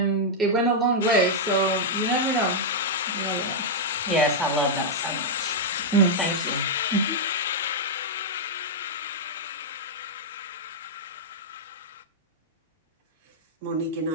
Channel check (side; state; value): both; normal; correlation -0.06